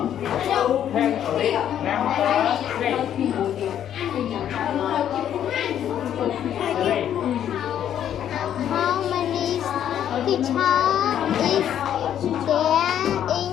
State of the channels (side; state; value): right; quieter; 10.2 dB